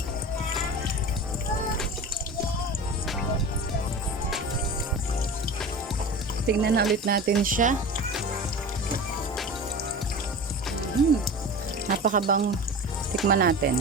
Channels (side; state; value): both; normal; correlation 0.32